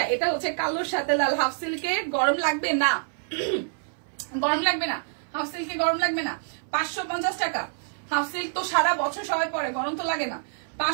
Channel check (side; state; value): left; silent; 60 dB below the other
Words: এটা হচ্ছে কালোর সাথে লাল হাফ সিল্কে। গরম লাগবে না, গরম লাগবে না, হাফ সিল্কে গরম লাগবে না। 550 টাকা। হাফ সিল্ক তো সারা বছর সবাই পরে, গরম তো লাগে না।